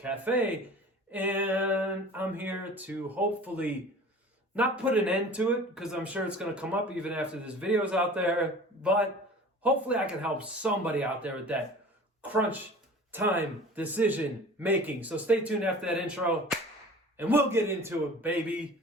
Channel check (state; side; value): normal; both; correlation 0.42